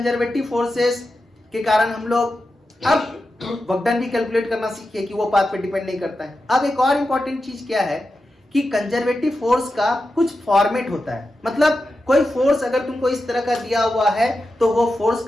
फोर्सेस के कारण हम लोग अब वर्क डन भी कैलकुलेट करना सीखे कि वो पाथ पे डिपेंड नहीं करता है। अब एक और इंपॉर्टेंट चीज क्या है कि कंजर्वेटिव फोर्स का कुछ फॉर्मेट होता है, मतलब कोई फोर्स अगर तुमको इस तरह का दिया हुआ है तो वो फोर्स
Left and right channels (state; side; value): normal; both; correlation 0.90